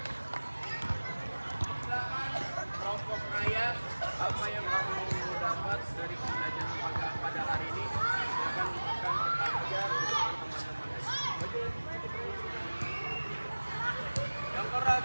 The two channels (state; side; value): inverted; both; correlation -1.00